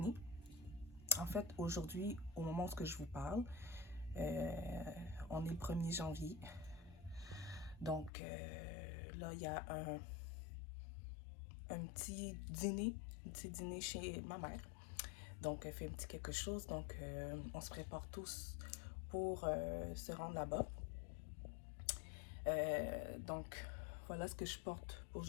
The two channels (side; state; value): right; drops out; at 8.1 s